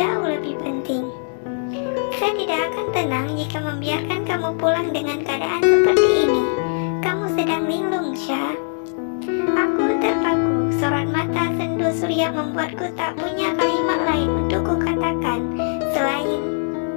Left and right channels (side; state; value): right; silent; digital silence